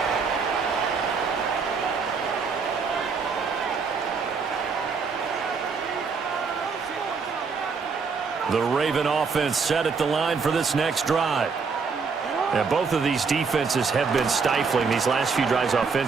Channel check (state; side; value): quieter; left; 5.2 dB